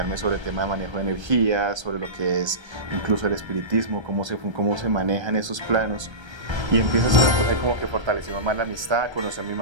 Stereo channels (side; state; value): left; late; 1.3 ms